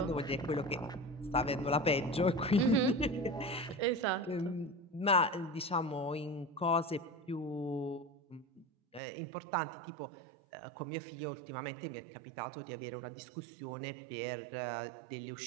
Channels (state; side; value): drops out; left; at 9.0 s